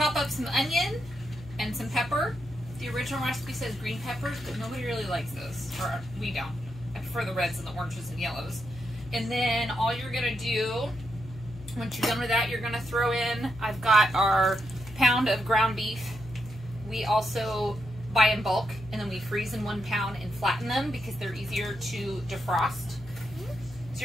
up some onion and some pepper. The original recipe says green peppers, but nobody really likes those, or we don't. I prefer the reds and the oranges and yellows. And then all you're gonna do, once you're done with that, you're gonna throw in, I've got our pound of ground beef. We also buy in bulk, and then we freeze in 1 pound and flatten them because they're easier to defrost. So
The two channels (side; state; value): left; noise; hum, 16 dB below the sound